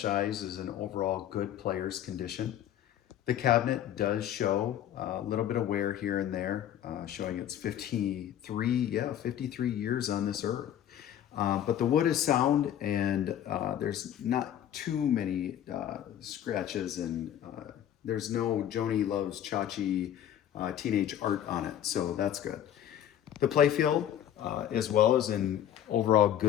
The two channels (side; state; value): right; quieter; 10.7 dB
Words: Eyes is in overall good player's condition. The cabinet does show a little bit of wear here and there, showing it's 53 years on this earth. But the wood is sound and there's not too many scratches and there's no Joni Loves Chachi teenage art on it, so that's good. The playfield as well is in overall